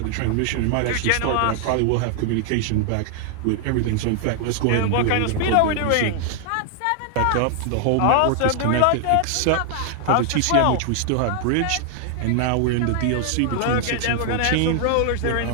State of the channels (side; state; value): both; different; correlation 0.00